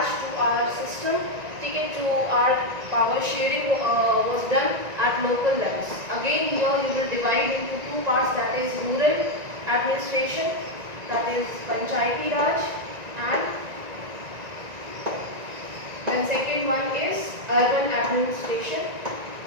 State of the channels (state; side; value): late; left; 1.9 ms